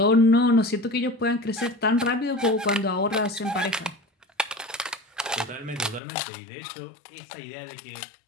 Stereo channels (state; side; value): drops out; right; at 6.0 s